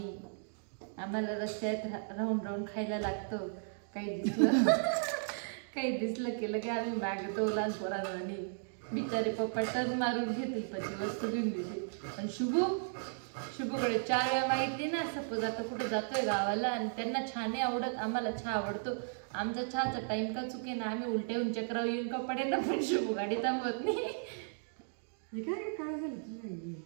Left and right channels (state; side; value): silent; left; digital silence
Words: आम्हाला रस्त्यात राहून राहून खायला लागतं. काही दिसलं केलं की आम्ही मागतो लहान पोरांनी. बिचारे पप्पा टर्न मारून घेतील पण वस्तू घेऊन देतील. पण शुभूकडे 4 वेळा माहिती ना. सपोज आता कुठे जातोय गावाला आणि त्यांना छान नाही आवडत, आम्हाला चहा आवडतो. आमचा चहाचा टाइम का चुके ना, आम्ही उलट्याहून चक्रावर येऊन का पडे ना, पण शुभू गाडी थांबवत नाही. काय झालं तुला?